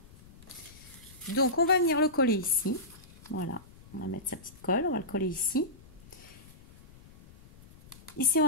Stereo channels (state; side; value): noise; left; rumble, 22 dB below the sound